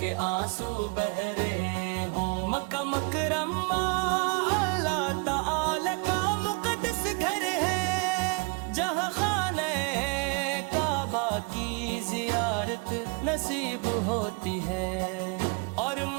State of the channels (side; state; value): left; quieter; 32.5 dB